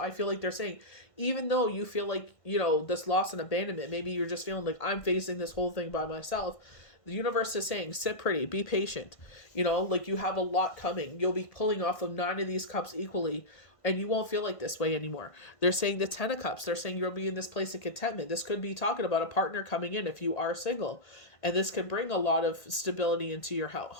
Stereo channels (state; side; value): late; right; 1.6 ms